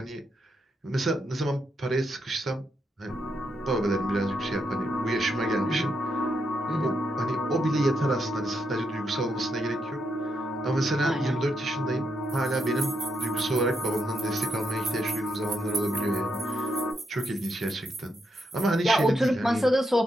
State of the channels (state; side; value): normal; both; correlation 0.80